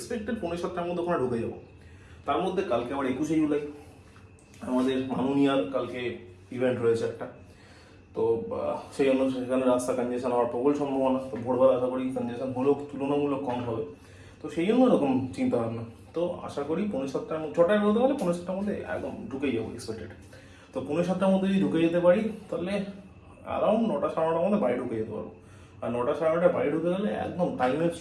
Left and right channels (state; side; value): identical; both; correlation 1.00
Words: 6:45টার মধ্যে ওখানে ঢুকে যাবো। তার মধ্যে কালকে আবার 21শে জুলাই আমাদের মাননীয়ার কালকে ইভেন্ট রয়েছে একটা, তো সেই জন্য সেখানে রাস্তা কনজেশন হওয়ার প্রবল সম্ভাবনা। তো ভোরবেলা আশা করি কনজেশন হলেও তুলনামূলক কম হবে, তো সেই জন্য এরকম চিন্তা ভাবনা। তো আশা করি 6:45টার মধ্যে, 6টায় বেরোতে পারলে 6:45টার মধ্যে একদম ঢুকেই যাবো এক্সপেক্টেড। তো 6:45টার মধ্যে যদি ঢুকে যেতে পারি তাহলে অ্যারাউন্ড 9টা 9:30টার মধ্যে বাড়ি ঢুকে যেতে পারবো। আর 9টা 9:30টায় বাড়ি ঢুকে গেলে একদম টাইমের